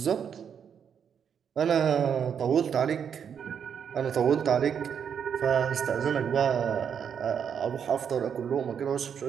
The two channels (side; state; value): left; quieter; 7.7 dB